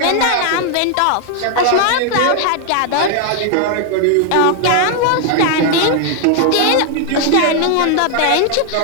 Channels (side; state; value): both; different; correlation 0.00